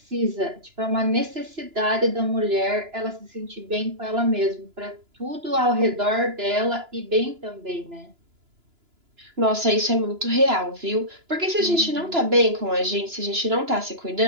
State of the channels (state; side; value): late; left; 2.9 ms